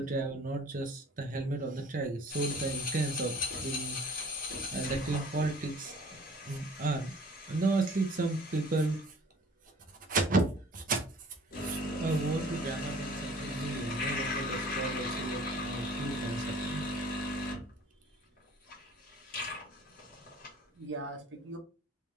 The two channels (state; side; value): normal; both; correlation 0.50